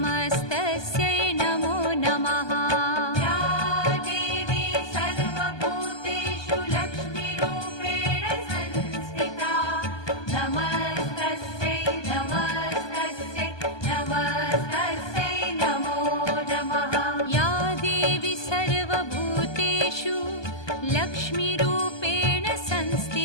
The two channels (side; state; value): right; late; 1.2 ms